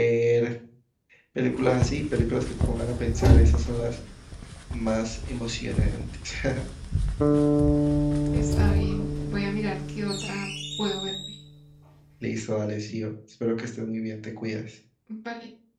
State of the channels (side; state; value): both; identical; correlation 1.00